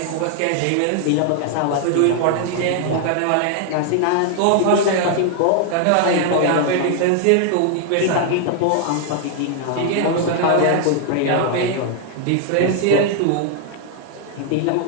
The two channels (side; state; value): both; different; correlation 0.00